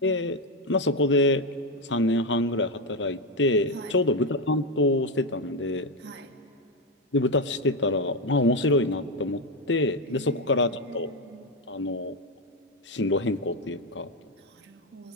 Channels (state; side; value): normal; both; correlation 0.08